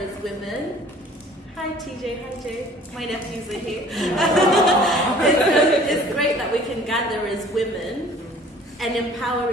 women. Hi TJ, hi Jay. My nephews are here. It's great that we can gather as women and empower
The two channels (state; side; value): normal; both; correlation 0.50